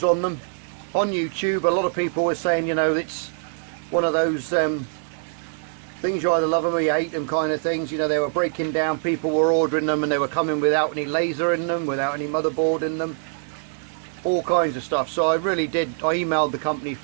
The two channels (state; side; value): silent; left; digital silence